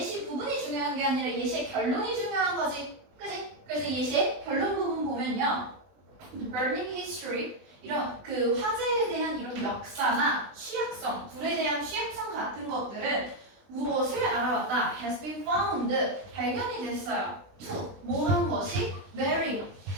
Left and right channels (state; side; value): late; left; 20 ms